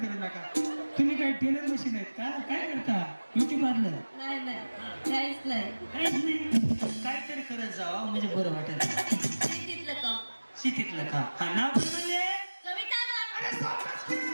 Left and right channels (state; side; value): inverted; both; correlation -1.00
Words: करू नका. तुम्ही काय टेलर मशीन आहेत का? काय करता? Beauty parlour? नाही नाही काहीच नाही. काहीच नाही. काहीतरी करत जावा म्हणजे बरं वाटेल. शेतीतलं काम. शेतीतलं काम. हा नाव काय म्हणले? कविता अरे सावकाश की.